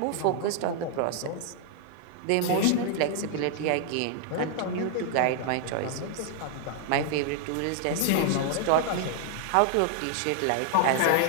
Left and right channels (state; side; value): different; both; correlation 0.00